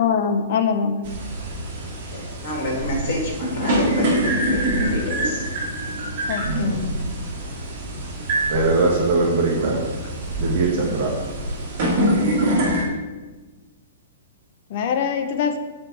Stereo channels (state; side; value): inverted; both; correlation -0.38